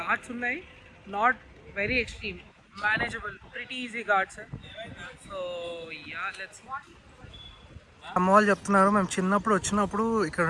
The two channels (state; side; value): identical; both; correlation 1.00